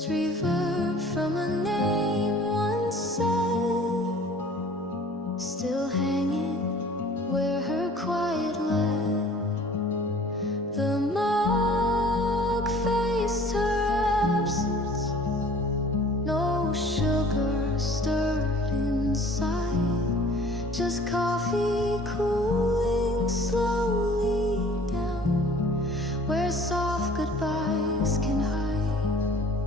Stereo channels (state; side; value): normal; both; correlation 0.50